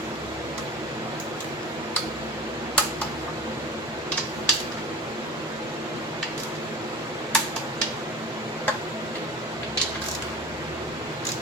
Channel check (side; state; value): both; normal; correlation 0.36